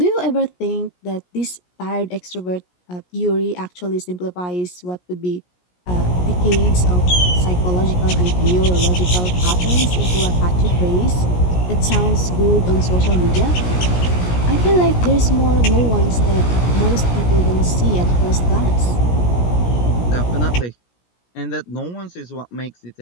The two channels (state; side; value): late; right; 17 ms